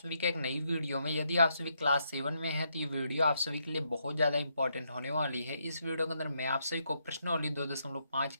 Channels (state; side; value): inverted; both; correlation -0.77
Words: का एक नई वीडियो में। यदि आप सभी क्लास 7 में हैं तो ये वीडियो आप सभी के लिए बहुत ज़्यादा इंपॉर्टेंट होने वाली है। इस वीडियो के अंदर मैं आप सभी को प्रश्नावली 2.5